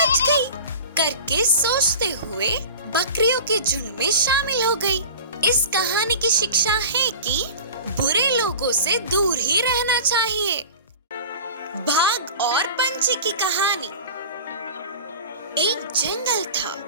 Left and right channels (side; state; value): both; inverted; correlation -0.36